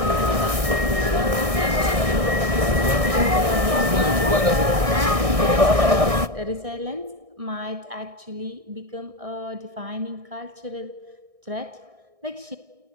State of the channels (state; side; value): late; left; 1.6 ms